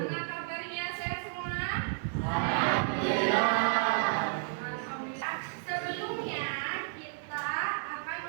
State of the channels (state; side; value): silent; left; digital silence